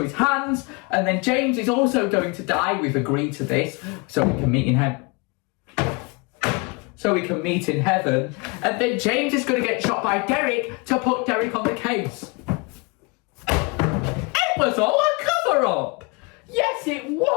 his hands. And then James is also going to die. We've agreed to this so we can meet in heaven. And then James is going to get shot by Derek to put Derek on the case. It was all a cover-up. Yes, it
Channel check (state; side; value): quieter; right; 29.7 dB